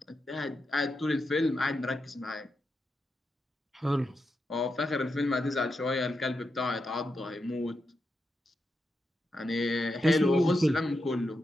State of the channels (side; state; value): both; normal; correlation 0.86